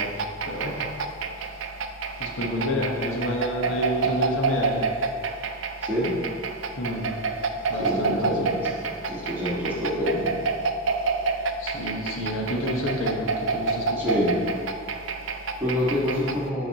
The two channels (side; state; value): both; normal; correlation 0.02